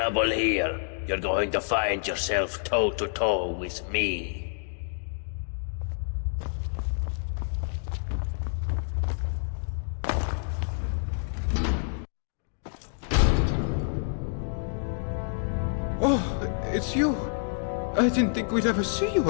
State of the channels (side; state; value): right; silent; digital silence